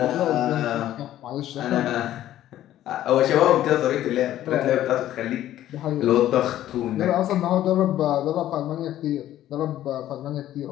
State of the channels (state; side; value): quieter; right; 12.9 dB